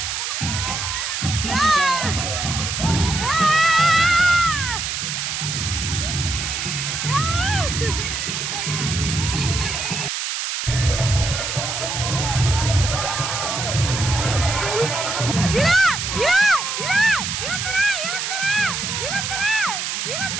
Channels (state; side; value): noise; right; hiss, 3 dB below the sound